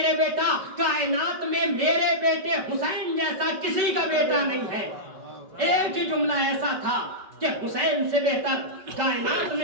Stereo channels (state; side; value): late; left; 5.2 ms